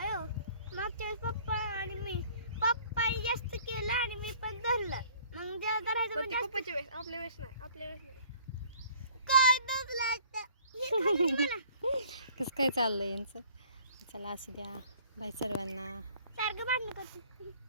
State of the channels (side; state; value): both; inverted; correlation -0.54